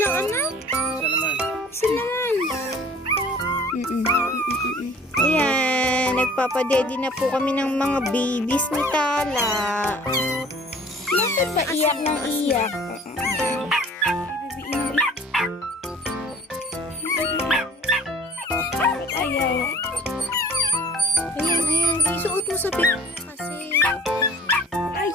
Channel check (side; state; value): both; normal; correlation 0.49